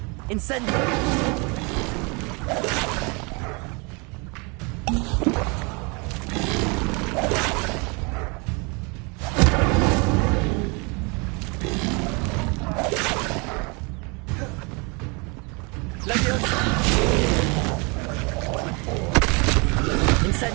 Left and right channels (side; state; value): left; quieter; 30.4 dB